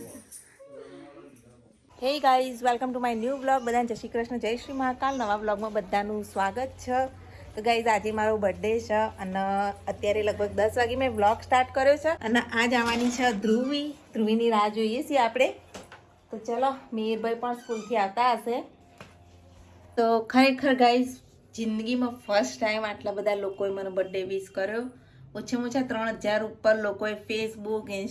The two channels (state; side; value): identical; both; correlation 1.00